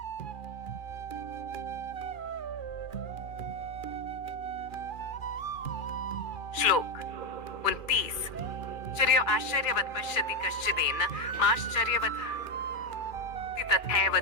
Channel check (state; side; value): late; right; 2.4 ms